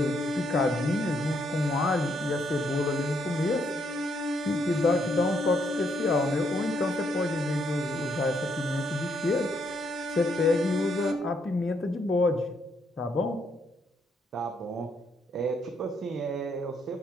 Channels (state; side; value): normal; both; correlation 0.74